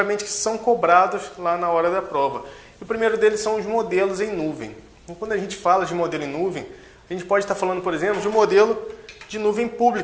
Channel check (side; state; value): both; identical; correlation 1.00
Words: que são cobrados lá na hora da prova. E o primeiro deles são os modelos em nuvem. Então, quando a gente fala de modelo em nuvem, a gente pode estar falando, por exemplo, de um modelo de nuvem